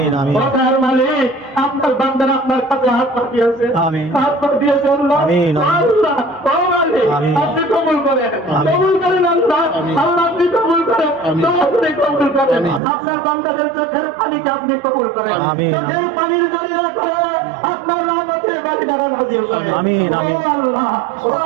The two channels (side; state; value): left; drops out; at 12.8 s